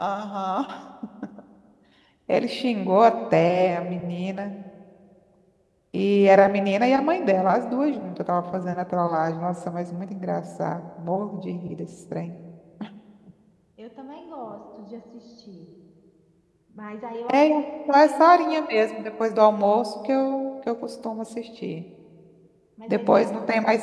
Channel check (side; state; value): both; identical; correlation 1.00